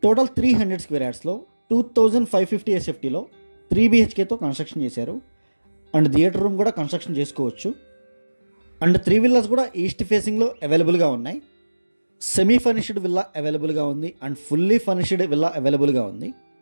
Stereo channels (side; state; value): both; inverted; correlation -1.00